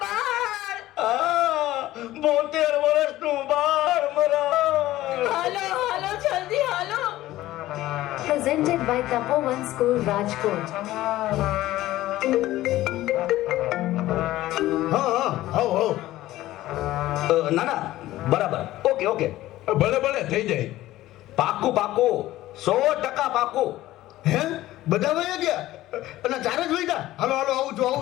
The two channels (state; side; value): quieter; right; 15.7 dB